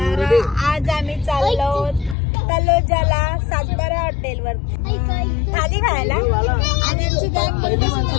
आज आम्ही चाललो तलोजाला सातबारा हॉटेल वर थाली खायला आणि आमची गँग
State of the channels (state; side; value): drops out; right; at 2.1 s